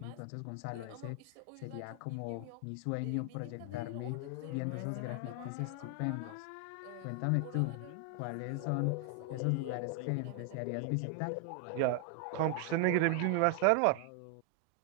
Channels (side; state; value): both; different; correlation 0.00